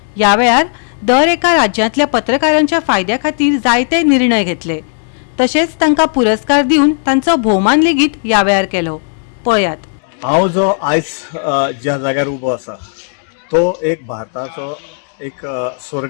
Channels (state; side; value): silent; right; 58 dB below the other